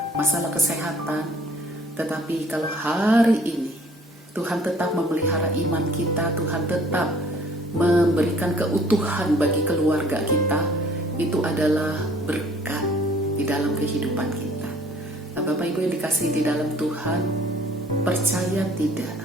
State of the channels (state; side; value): normal; both; correlation 0.56